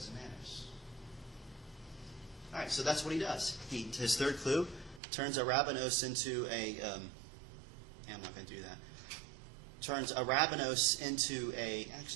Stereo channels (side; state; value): left; drops out; at 5.0 s